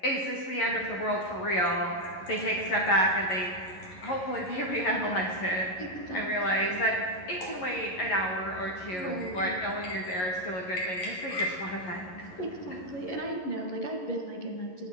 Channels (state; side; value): late; right; 11 ms